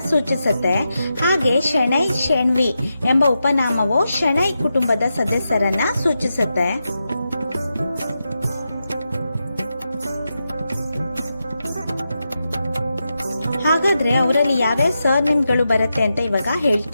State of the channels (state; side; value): inverted; both; correlation -0.88